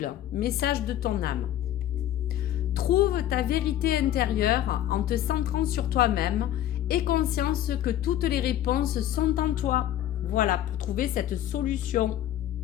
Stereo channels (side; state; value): right; quieter; 12.2 dB